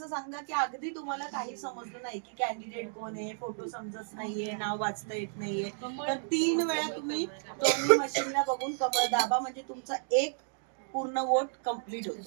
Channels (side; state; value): left; silent; digital silence